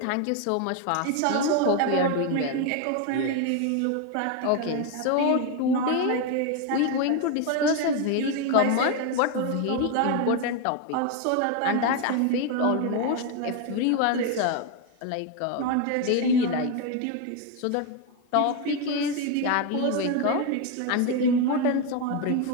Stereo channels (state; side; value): different; both; correlation 0.01